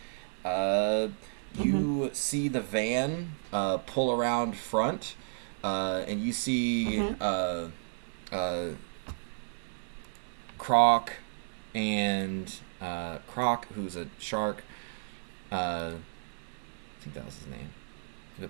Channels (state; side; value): silent; left; 56 dB below the other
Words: You see the van pull around front, and you see Croc and Croc, who's a shark. I think that was his name. Go